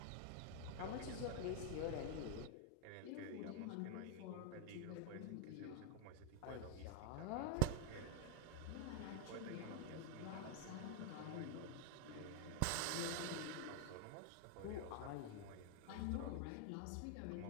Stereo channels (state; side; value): different; both; correlation 0.01